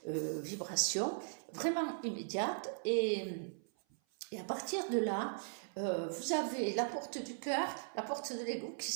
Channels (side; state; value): left; silent; 52 dB below the other